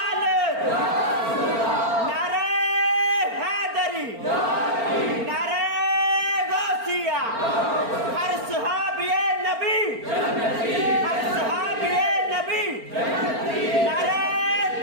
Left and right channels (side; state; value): left; late; 4.4 ms